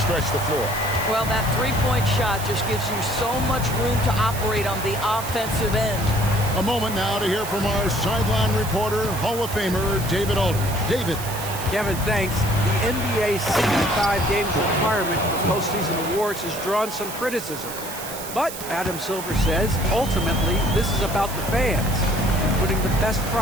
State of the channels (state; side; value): noise; right; hiss, 10 dB below the sound